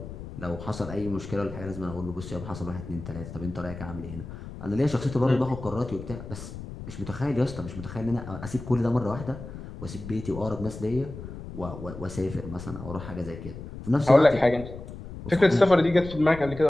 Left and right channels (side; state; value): left; noise; rumble, 11 dB below the sound